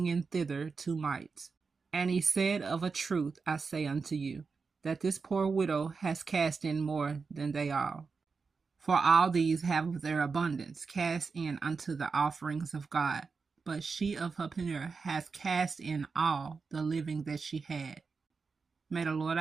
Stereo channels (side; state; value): left; quieter; 4.8 dB